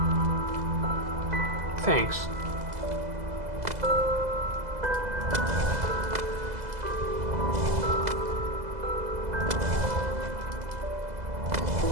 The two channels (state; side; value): late; left; 2.0 ms